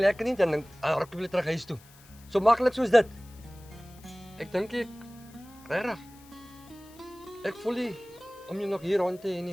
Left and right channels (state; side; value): noise; left; hiss, 24 dB below the sound